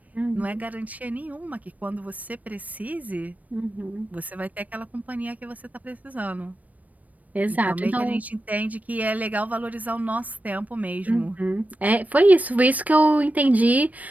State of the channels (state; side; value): late; left; 0.073 ms